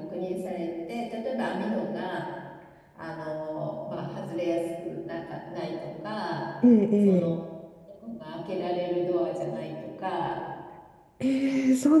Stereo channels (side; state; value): both; identical; correlation 1.00